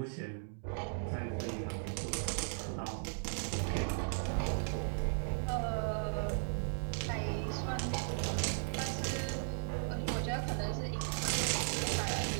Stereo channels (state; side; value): silent; left; digital silence